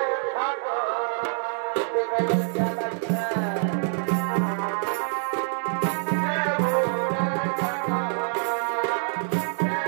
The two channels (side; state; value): left; silent; 61 dB below the other